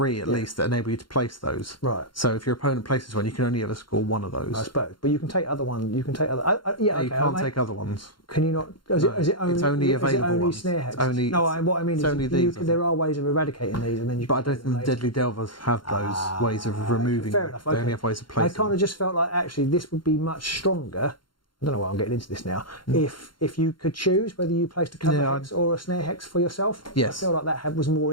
at least that enable you to place those. Right. So if your opponent places one, you can only ever score one of those. I suppose. But you can take other ones. You can take other. Yeah, You can't take other ones. Can you not? Is it only? It's only available Is it only ones. snare hex? It's only- No, what I mean it's is only these, I there are ways of eradicating these, and then you. But I don't think the Deadly Delvers have those ways of removing Fair them. enough. They Okay. only have ways of I placing kind them. of just felt like actually this would be much stronger. I don't know why I'm getting into this now. If you could choose whether you placed a cover hex or a snare hex for yourself, Yes. I feel like that was more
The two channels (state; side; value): late; right; 0.72 ms